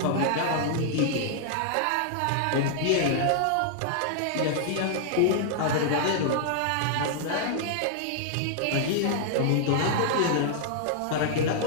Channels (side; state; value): both; different; correlation -0.01